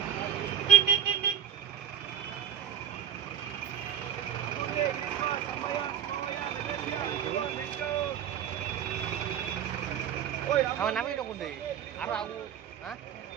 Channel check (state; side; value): quieter; left; 9.1 dB